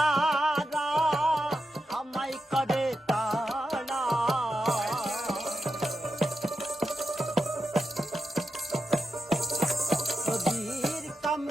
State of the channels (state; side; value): normal; both; correlation 0.88